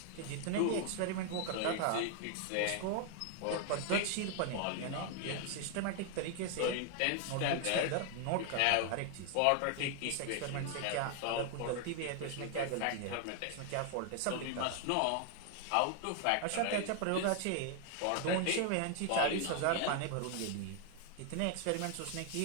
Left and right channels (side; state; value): both; different; correlation 0.00